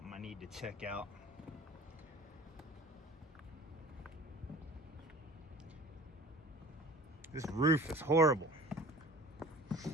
I need to check out. This roof is horrible.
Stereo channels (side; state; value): both; normal; correlation 0.42